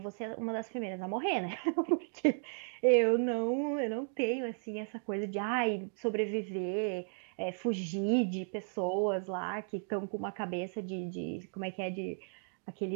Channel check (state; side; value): silent; left; digital silence